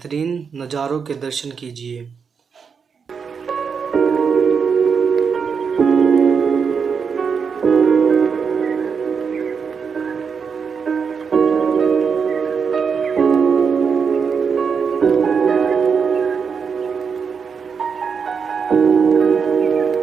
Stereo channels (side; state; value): left; quieter; 6.1 dB